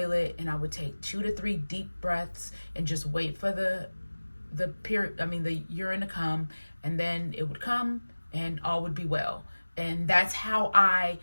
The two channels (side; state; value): both; inverted; correlation -1.00